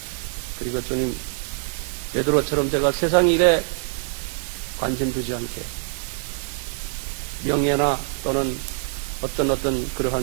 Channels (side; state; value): left; silent; 62 dB below the other